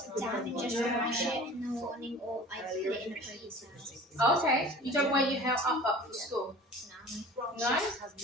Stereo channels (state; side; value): normal; both; correlation 0.43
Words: down and just wash it in the morning, or I put it in the previous house. Okay, you don't wear your hair up for school? Grant No? Shapps has